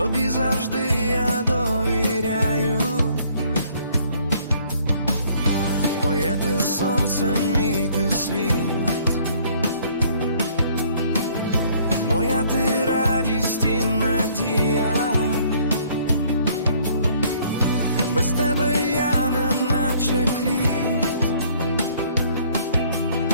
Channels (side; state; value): both; inverted; correlation -0.61